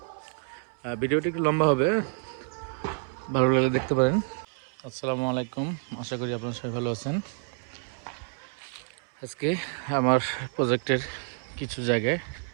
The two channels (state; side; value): silent; left; 59 dB below the other